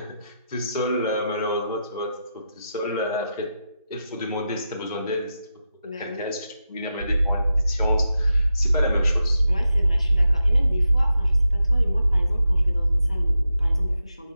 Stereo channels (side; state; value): both; inverted; correlation -0.88